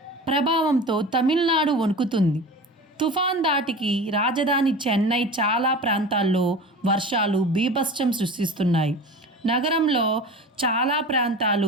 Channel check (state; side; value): normal; both; correlation 0.34